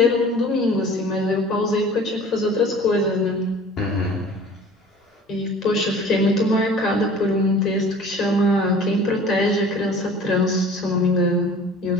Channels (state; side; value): normal; both; correlation 0.45